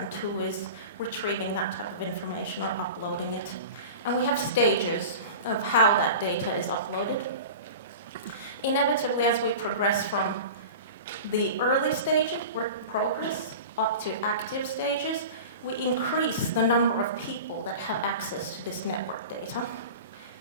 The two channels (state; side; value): inverted; both; correlation -0.34